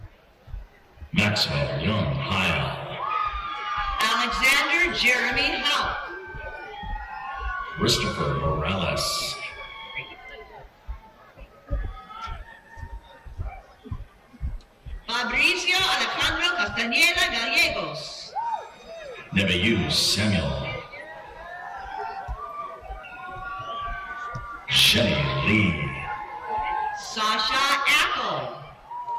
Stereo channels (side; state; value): both; identical; correlation 1.00